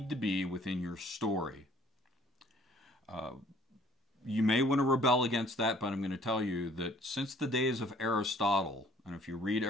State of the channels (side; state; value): both; normal; correlation 0.57